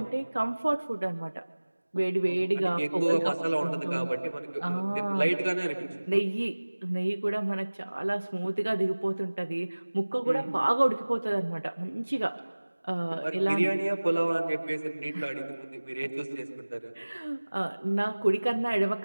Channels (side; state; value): both; inverted; correlation -1.00